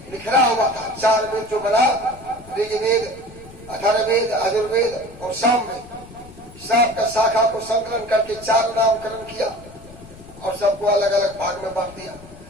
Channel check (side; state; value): left; noise; rumble, 20 dB below the sound